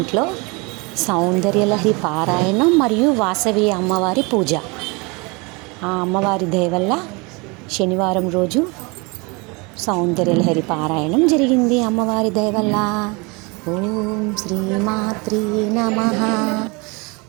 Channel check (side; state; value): left; quieter; 28.2 dB